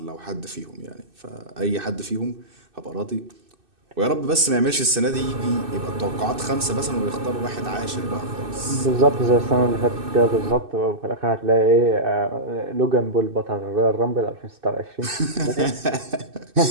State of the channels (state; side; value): late; left; 2.6 ms